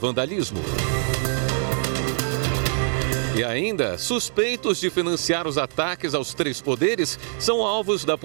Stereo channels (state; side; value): silent; left; 58 dB below the other